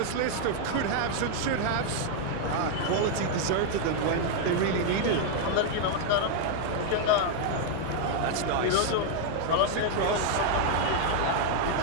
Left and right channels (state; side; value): different; both; correlation 0.00